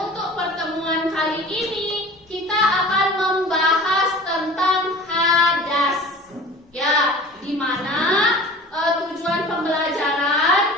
pertemuan kali ini kita akan membahas tentang hadas. Ya, di mana tujuan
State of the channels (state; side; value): normal; both; correlation 0.41